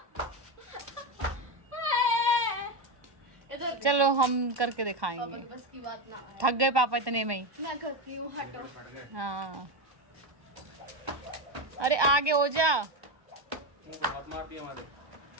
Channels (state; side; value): late; left; 1.2 ms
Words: इधर चलो हम करके दिखाएंगे। बस की बात ना है। थक गए पापा इतने में ही। मैं करती हूँ, हटो। हाँ अरे आगे हो जा। मुंह पे मत मारती हमारे।